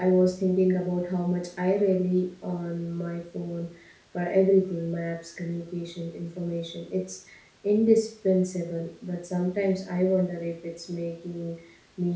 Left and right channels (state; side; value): identical; both; correlation 1.00